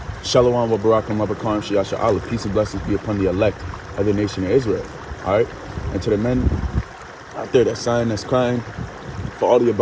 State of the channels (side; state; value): both; identical; correlation 1.00